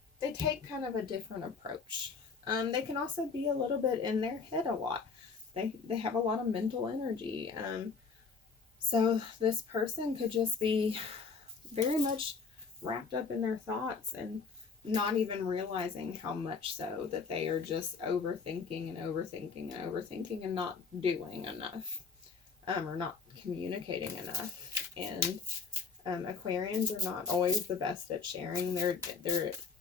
take kind of a different approach. They can also be a little bit in their head a lot. They have a lot of mental energy. So this person could just be very much wrapped up in their thoughts and not even realizing how much so that they are just overthinking and overthinking and overthinking and not doing enough, or not communicating enough. And Aquarians are not always the best at sharing their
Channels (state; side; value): quieter; right; 5.0 dB